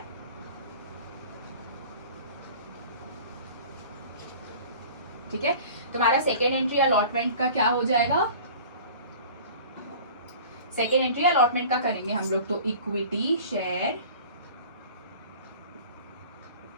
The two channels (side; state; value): both; inverted; correlation -0.43